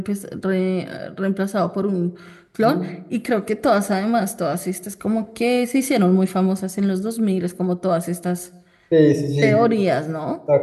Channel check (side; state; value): both; identical; correlation 1.00